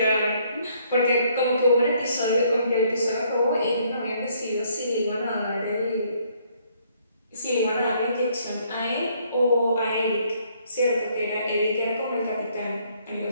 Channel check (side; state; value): both; inverted; correlation -0.66